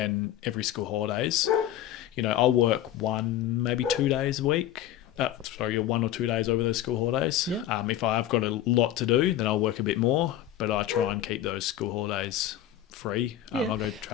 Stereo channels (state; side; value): quieter; right; 12.0 dB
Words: every school holidays, I'll work 1, maybe 2 days a week. 1 or 2 days over those school holidays. Yeah. If I've got a lot to do, then I'll work a bit more, but I try and keep those school holidays free. I'll go